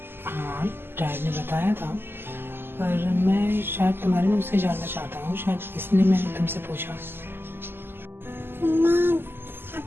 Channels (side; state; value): left; late; 0.11 ms